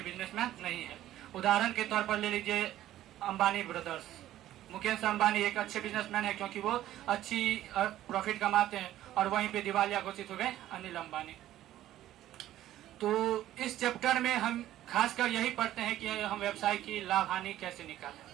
बिजनेसमैन नहीं है। उदाहरण के तौर पर ले लीजिए अंबानी ब्रदर्स। मुकेश अंबानी एक अच्छे बिजनेसमैन है क्योंकि वो अच्छी प्रॉफिट कमाते हैं और वहीं पे दिवालिया घोषित हो गए अनिल अंबानी। तो इस चैप्टर में हम खासकर यही पढ़ते हैं कि हम व्यवसाय की लाभ हानि कैसे निकालें।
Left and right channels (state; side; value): quieter; left; 13.4 dB